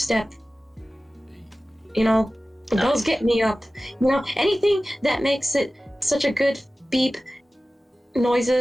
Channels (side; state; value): both; normal; correlation 0.96